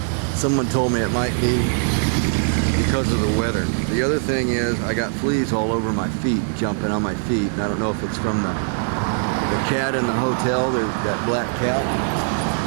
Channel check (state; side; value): silent; left; 65 dB below the other